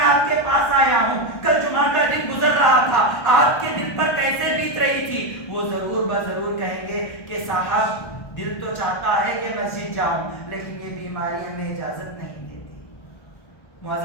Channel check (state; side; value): late; right; 1.2 ms